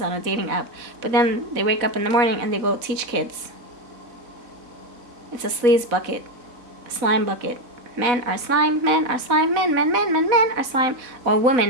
on a dating app. But then they wake up in the morning and they go teach kids. It's a sleaze bucket, slime bucket. Men are slime, men are slime, men are slime. Or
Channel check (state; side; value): late; left; 4.0 ms